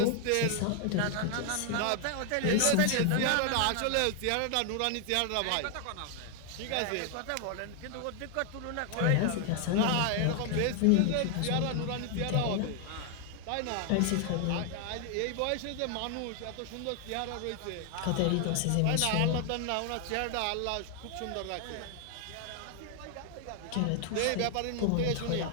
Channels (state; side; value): different; both; correlation 0.00